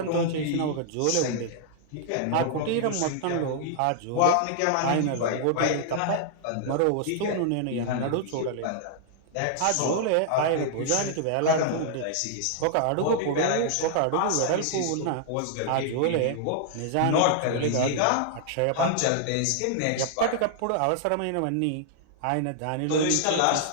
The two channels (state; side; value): different; both; correlation -0.01